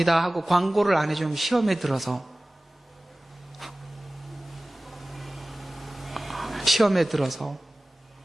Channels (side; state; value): both; normal; correlation 0.98